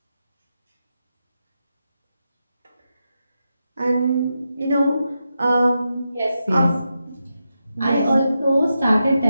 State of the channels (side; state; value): both; inverted; correlation -0.87